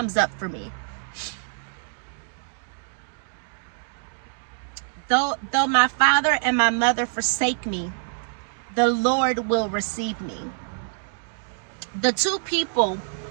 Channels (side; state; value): left; silent; digital silence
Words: Though my father and my mother forsake me, the Lord will receive me. The two people